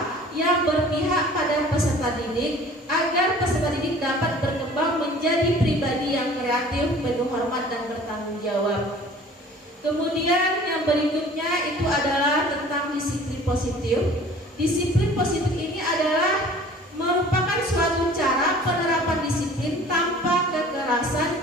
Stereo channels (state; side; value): normal; both; correlation 0.48